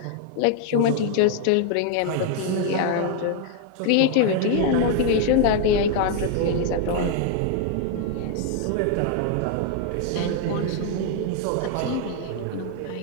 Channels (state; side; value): different; both; correlation 0.00